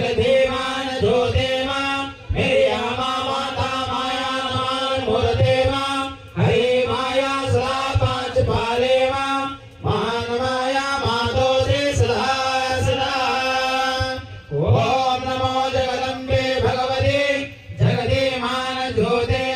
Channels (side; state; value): both; identical; correlation 1.00